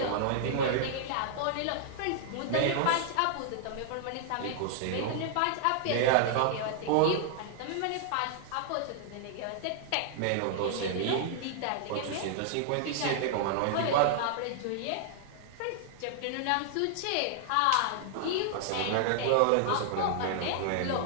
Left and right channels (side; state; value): both; different; correlation -0.01